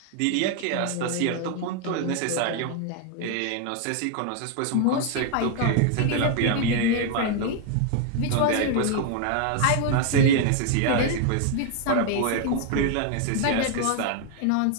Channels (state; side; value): different; both; correlation 0.01